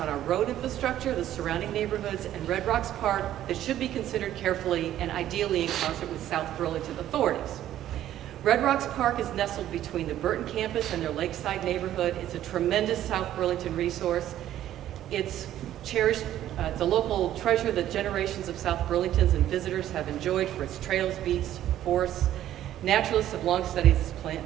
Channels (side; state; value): left; quieter; 12.3 dB